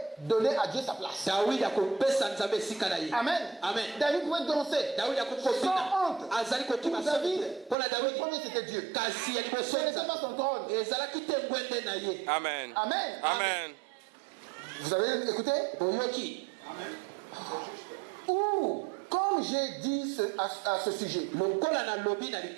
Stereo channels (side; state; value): left; drops out; at 7.8 s